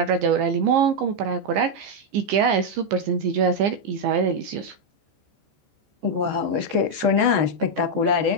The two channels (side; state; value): left; late; 15 ms